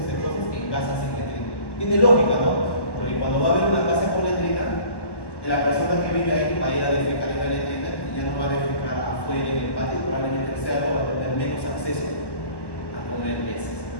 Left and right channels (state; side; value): late; right; 1.1 ms